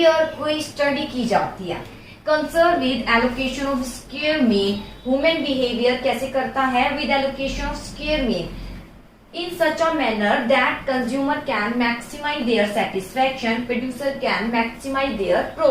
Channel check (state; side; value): identical; both; correlation 1.00